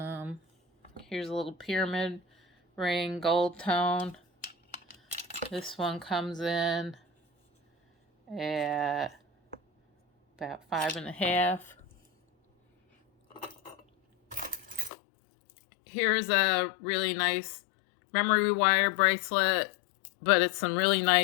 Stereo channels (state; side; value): drops out; right; at 14.9 s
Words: Here's a little pyramid ring, gold tone. This one comes in at about 5.5. Here's a really nice memory wire bracelet, but it's some really